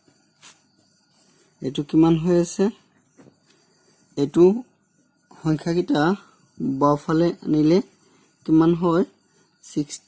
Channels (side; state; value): both; identical; correlation 1.00